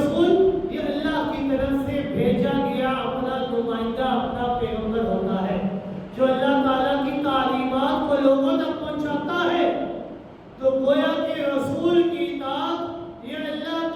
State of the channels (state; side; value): identical; both; correlation 1.00